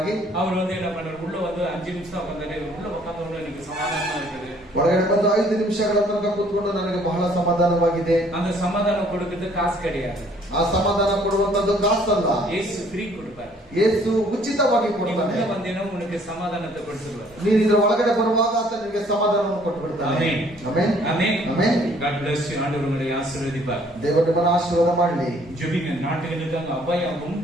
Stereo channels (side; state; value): both; normal; correlation 0.60